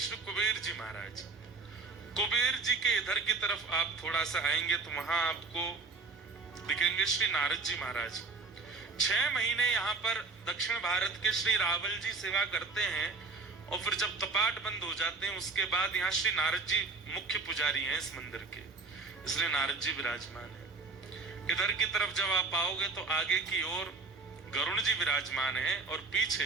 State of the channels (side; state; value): left; quieter; 4.1 dB